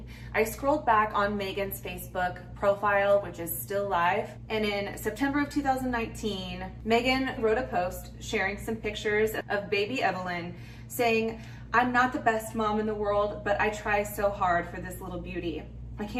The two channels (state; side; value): identical; both; correlation 1.00